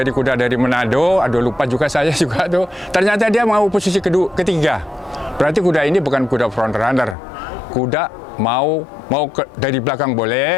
kuda dari Manado, aduh lupa juga saya juga tuh. Ternyata dia mau posisi ketiga. Berarti kuda ini bukan kuda front runner. Kuda mau dari belakang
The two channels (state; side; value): drops out; right; at 7.2 s